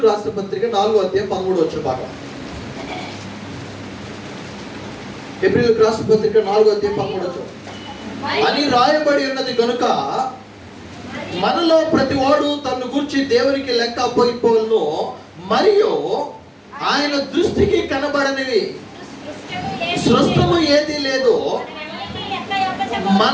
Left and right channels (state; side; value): identical; both; correlation 1.00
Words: రాసిన పత్రిక 4:13 భాగం. హెబ్రీయులకు రాసిన పత్రిక 4:13 అని రాయబడి ఉన్నది కనుక మనలో ప్రతి వాడు తన గురించి దేవునికి లెక్క అప్పగిపోవలను, మరియు ఆయన దృష్టికి కనబడనివి సృష్టము ఏది లేదు.